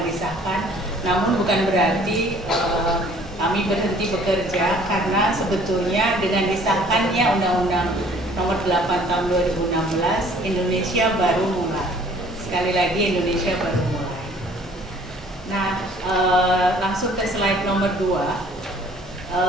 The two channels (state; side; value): normal; both; correlation 0.55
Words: disahkan. Namun bukan berarti kami berhenti bekerja, karena sebetulnya dengan disahkannya Undang-Undang Nomor 8 Tahun 2016, Indonesia baru mulai. Sekali lagi Indonesia baru mulai. Nah, langsung ke slide nomor 2.